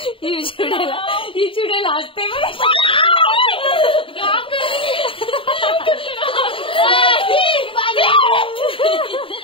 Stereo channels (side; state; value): right; late; 0.25 ms